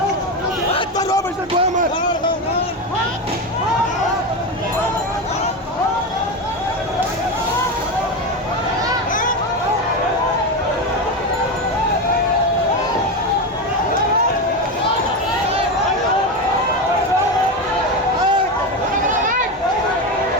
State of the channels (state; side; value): normal; both; correlation 0.16